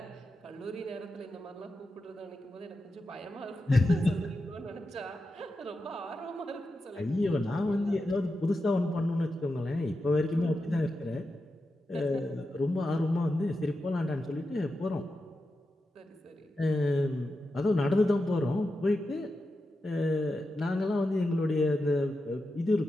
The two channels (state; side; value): normal; both; correlation 0.89